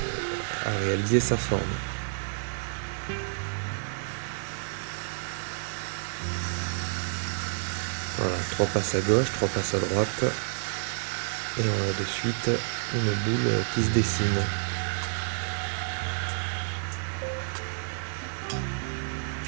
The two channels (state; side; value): silent; left; 58 dB below the other